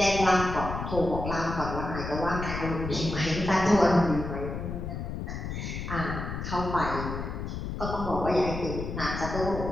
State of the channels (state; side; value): noise; left; rumble, 5 dB below the sound